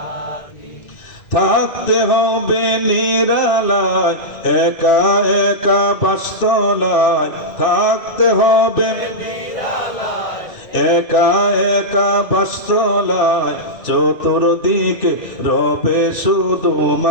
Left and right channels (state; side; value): late; right; 2.6 ms